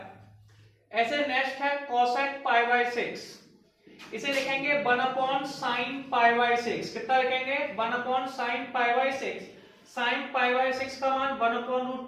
ऐसे नेक्स्ट है कोसेक पाई बाय 6। इसे लिखेंगे 1 अपॉन साइन पाई बाय 6। कितना लिखेंगे? 1 upon sine pi by 6। Sine pi by 6 का मान 1 अपॉन रूट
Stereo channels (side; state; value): both; identical; correlation 1.00